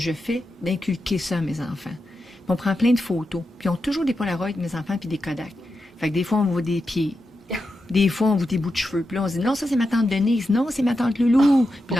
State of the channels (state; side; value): normal; both; correlation 0.88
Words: fais, d'inculquer ça à mes enfants. Puis on prend plein de photos, puis ils ont toujours des Polaroids, mes enfants, puis des Kodak. Fait que des fois, on voit des pieds. Des fois, on voit des bouts de cheveux. Puis là, on se dit, non, ça, c'est ma tante Denise. Non, c'est ma tante Loulou. Puis